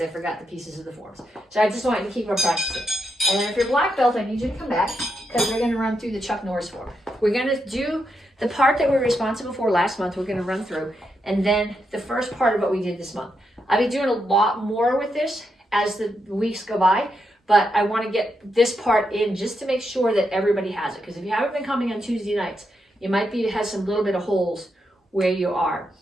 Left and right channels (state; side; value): normal; both; correlation 0.83